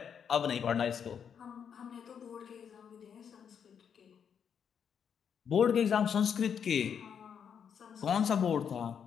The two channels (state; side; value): quieter; right; 7.6 dB